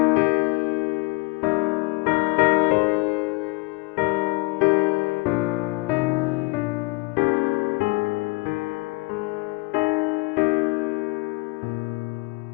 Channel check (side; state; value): right; quieter; 25.9 dB